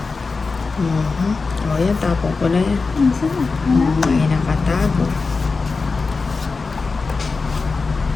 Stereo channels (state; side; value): quieter; right; 4.2 dB